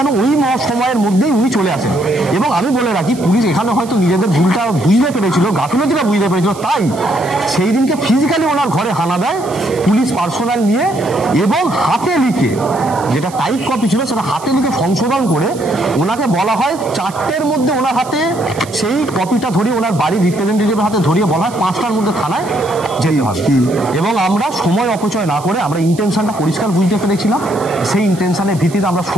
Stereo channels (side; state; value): right; noise; hiss, 18 dB below the sound